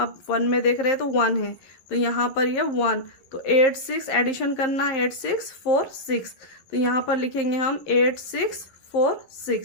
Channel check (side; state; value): right; late; 11 ms